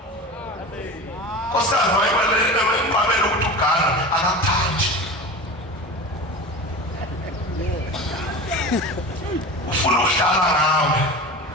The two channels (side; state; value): both; normal; correlation 0.31